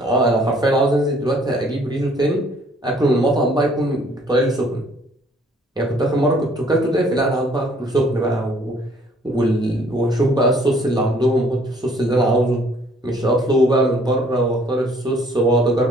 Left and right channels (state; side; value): normal; both; correlation 0.60